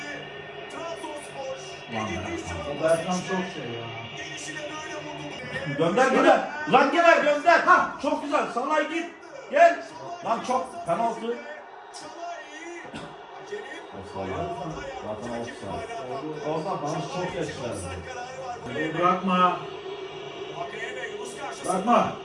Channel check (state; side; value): identical; both; correlation 1.00